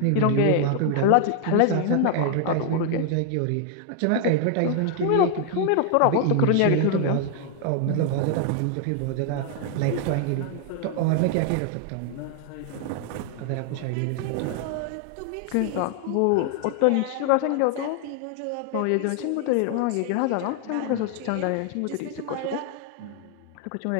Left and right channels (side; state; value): both; different; correlation 0.00